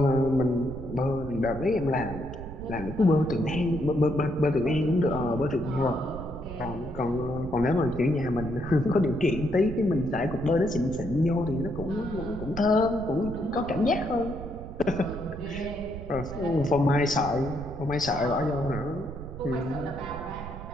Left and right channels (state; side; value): noise; right; rumble, 11 dB below the sound